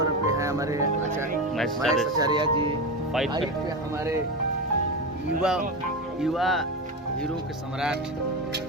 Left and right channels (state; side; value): normal; both; correlation 0.18